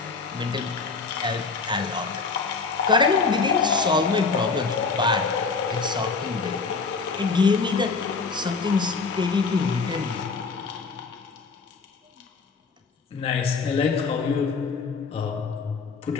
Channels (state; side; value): quieter; right; 4.6 dB